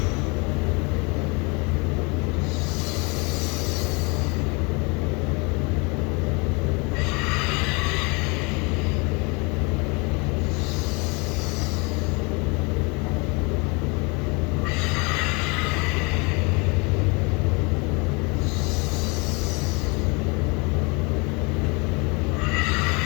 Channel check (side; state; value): right; quieter; 29.5 dB